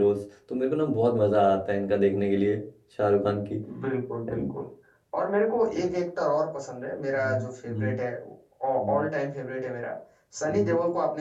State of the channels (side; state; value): both; identical; correlation 1.00